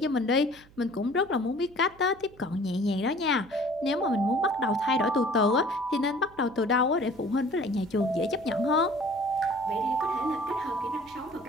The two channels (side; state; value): right; noise; hum, 25 dB below the sound